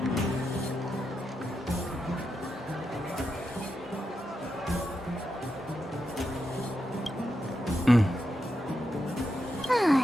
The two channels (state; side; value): normal; both; correlation 0.86